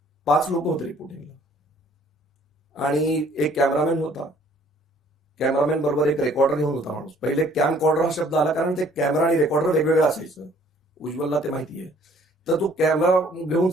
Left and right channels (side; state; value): both; normal; correlation 0.59